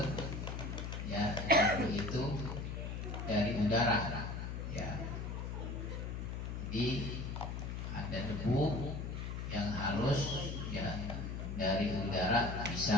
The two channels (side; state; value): left; noise; hum, 4 dB below the sound